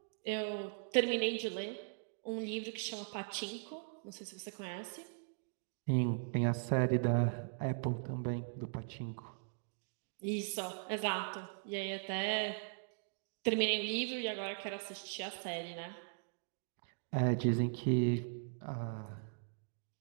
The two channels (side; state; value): left; silent; digital silence